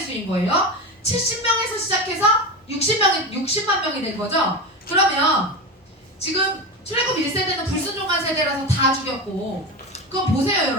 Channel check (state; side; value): normal; both; correlation 0.22